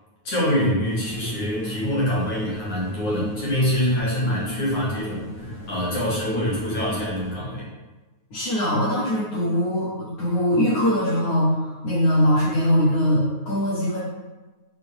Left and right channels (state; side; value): late; right; 9.4 ms